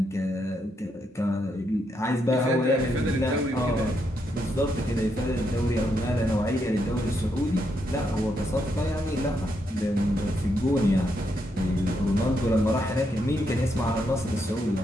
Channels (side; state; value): both; normal; correlation 0.79